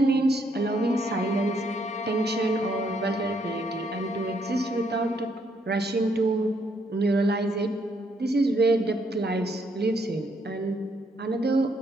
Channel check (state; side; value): normal; both; correlation 0.72